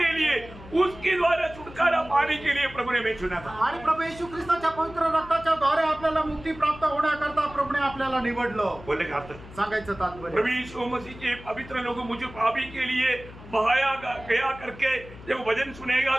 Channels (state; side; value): noise; left; hum, 17 dB below the sound